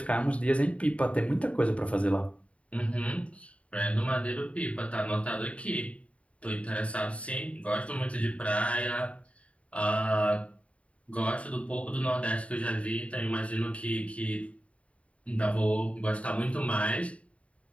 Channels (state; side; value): late; right; 0.064 ms